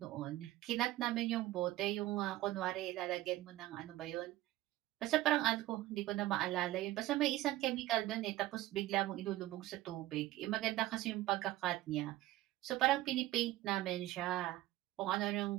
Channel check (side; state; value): left; quieter; 16.2 dB